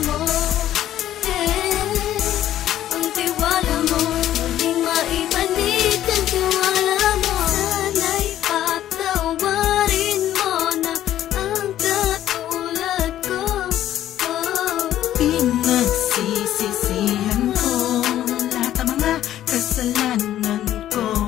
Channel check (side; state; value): right; quieter; 12.4 dB